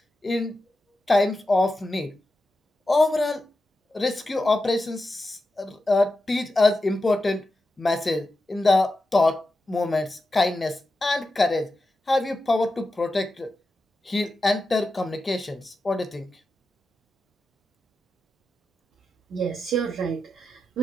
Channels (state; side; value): normal; both; correlation 0.90